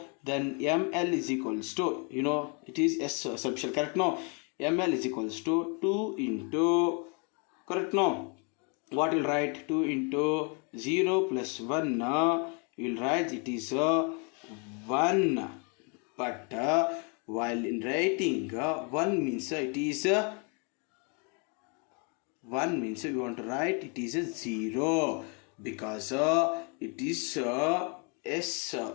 then ML is equals to, it is S subshell, correct? No, ML is equals to 2 into, correct? No, what will write? 2 into 0 plus 1, you will write it is 1. But while in writing 1 means it is 1 means we want to write it is a 0, because it is S.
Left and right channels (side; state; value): right; quieter; 35.3 dB